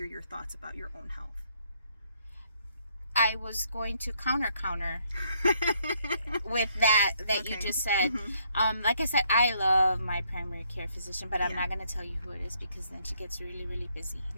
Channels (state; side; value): inverted; both; correlation -0.70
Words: your thoughts about your own health. I was going to counter with that okay. You just said. Like I said, I love my primary care physician, but I'm not going to tell you who it is because then she gets really, really busy.